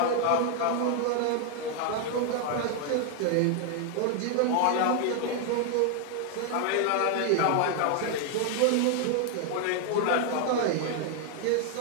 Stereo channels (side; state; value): both; different; correlation 0.00